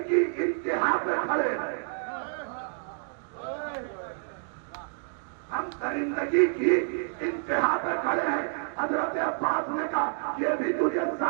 کی انتہا پہ کھڑے ہیں، ہم درندگی کی انتہا پہ کھڑے ہیں۔ حضرت عباس نے کہا یہ بھی تجھے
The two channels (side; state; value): left; silent; digital silence